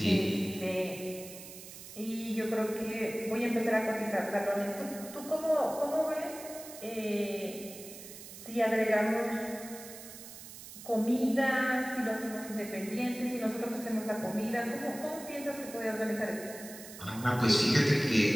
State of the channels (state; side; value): noise; right; hiss, 14 dB below the sound